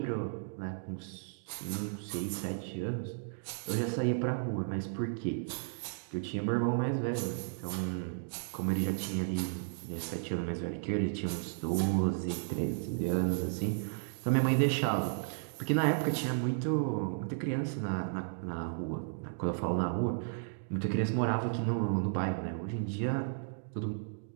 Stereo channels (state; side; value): silent; left; digital silence